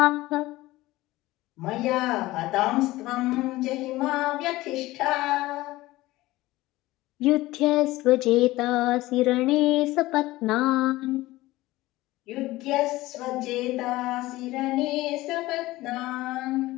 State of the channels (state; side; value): quieter; right; 18.1 dB